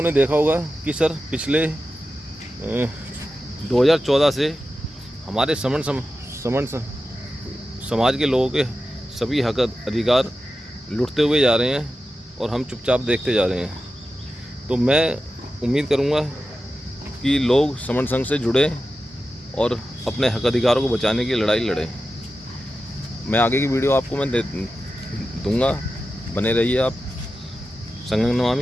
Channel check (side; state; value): both; normal; correlation 0.92